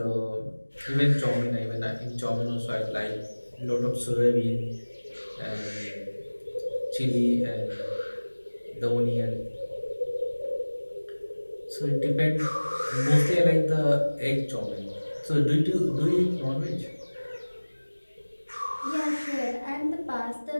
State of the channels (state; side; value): inverted; both; correlation -1.00